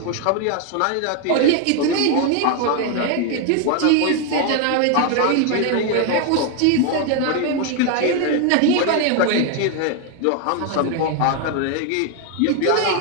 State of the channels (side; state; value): both; different; correlation 0.01